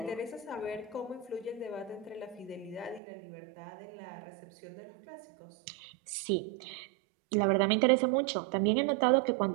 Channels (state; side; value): drops out; left; at 3.0 s